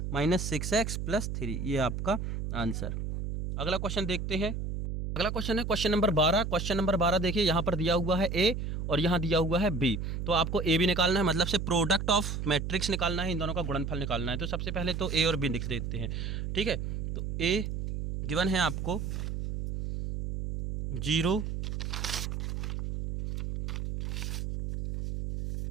माइनस 6x प्लस 3, ये आपका आंसर। अगला क्वेश्चन देखते हैं। अगला क्वेश्चन है क्वेश्चन नंबर 12। क्वेश्चन नंबर 12 देखिए, यहाँ पर दिया हुआ है a और यहाँ दिया हुआ है b। तो आपको a b निकालना है, मतलब से प्रोडक्ट ऑफ मैट्रिक्स निकालना है, इन दोनों का गुणनफल निकालना है। तो सबसे पहले तो a और b लिख देते हैं, ठीक है। तो a गिवन है आपको 0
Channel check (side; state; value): right; noise; hum, 3 dB below the sound